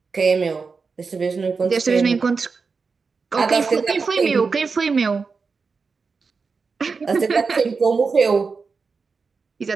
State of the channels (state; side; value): quieter; left; 4.8 dB